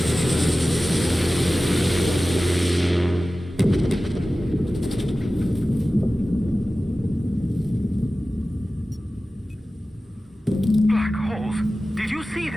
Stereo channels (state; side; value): normal; both; correlation 0.96